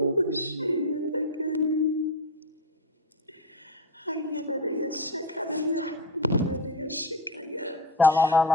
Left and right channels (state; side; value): normal; both; correlation 0.15